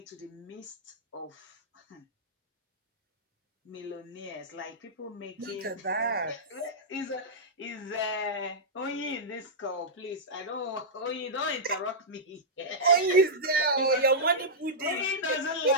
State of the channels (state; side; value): normal; both; correlation -0.12